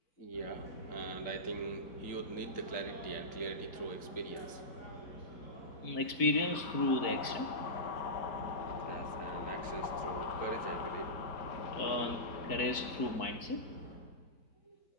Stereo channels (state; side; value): late; right; 4.5 ms